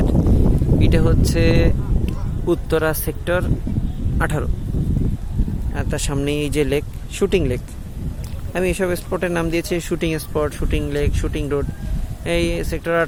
এটা হচ্ছে উত্তরা সেক্টর 18। আর তার সামনে এই যে লেক, শুটিং লেক। আমি এসব স্পটের নাম দিয়েছি shooting spot, shooting lake, shooting road. এই সেক্টর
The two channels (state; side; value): identical; both; correlation 1.00